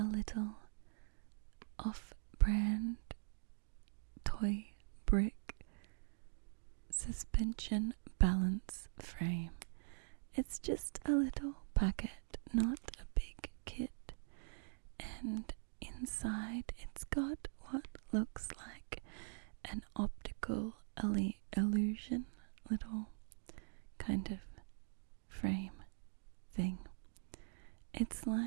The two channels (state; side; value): silent; left; digital silence